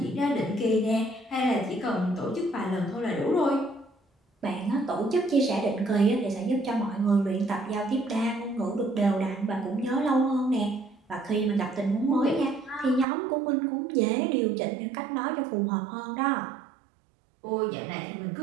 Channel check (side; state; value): left; drops out; at 13.1 s